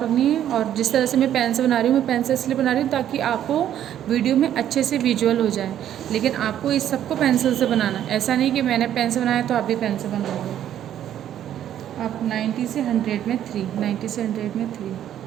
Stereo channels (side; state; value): left; quieter; 10.9 dB